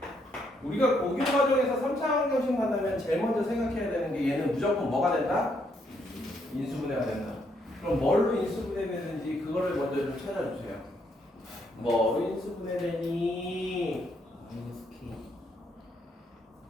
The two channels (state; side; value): normal; both; correlation 0.74